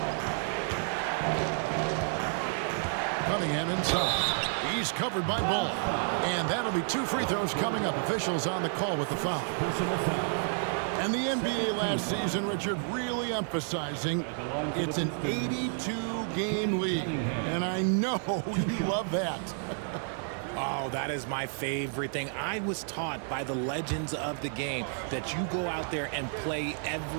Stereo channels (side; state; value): left; silent; 57 dB below the other